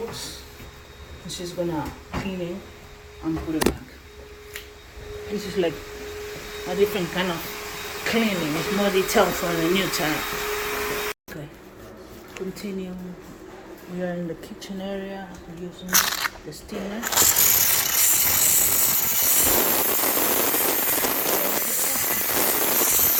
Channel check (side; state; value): both; identical; correlation 1.00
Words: and she's gonna clean it and put it back. This is like a different kind of cleaning. It's more detailed for the new tenant. Okay, continue. We are in the kitchen area using the steamer.